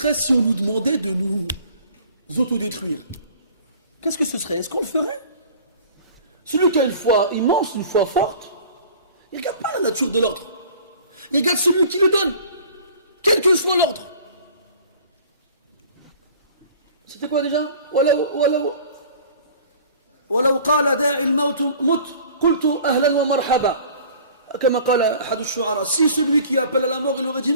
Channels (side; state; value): both; inverted; correlation -0.47